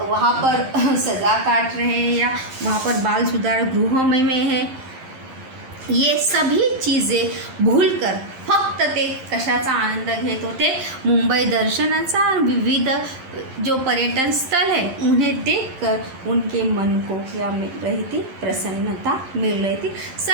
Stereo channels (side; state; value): left; late; 11 ms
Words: पर सज़ा काट रहे हैं या वहाँ पर बाल सुधार गृह में है, ये सभी चीज़ें भूलकर फक्त ते कशाचा आनंद घेत होते, मुंबई दर्शनाचा. विविध जो पर्यटन स्थल है उन्हें देखकर उनके मन को क्या मिल रही थी, प्रसन्नता मिल रही थी.